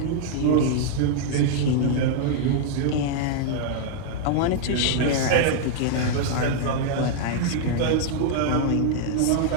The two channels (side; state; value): both; different; correlation -0.01